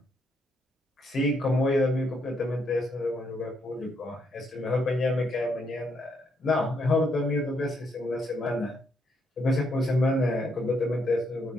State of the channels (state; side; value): normal; both; correlation 0.75